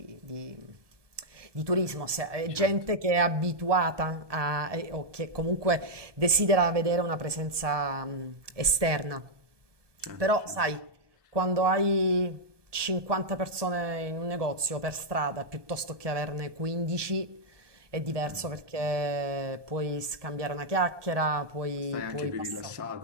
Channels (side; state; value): left; late; 1.2 ms